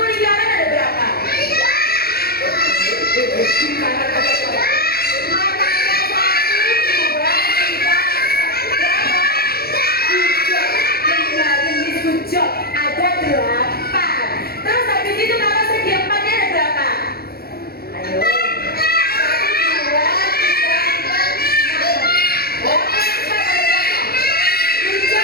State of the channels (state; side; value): late; right; 0.45 ms